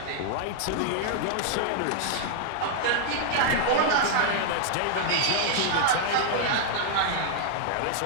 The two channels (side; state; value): both; different; correlation -0.01